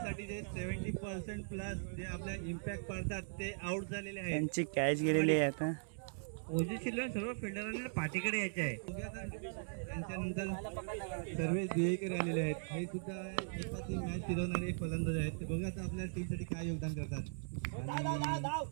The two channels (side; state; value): left; silent; digital silence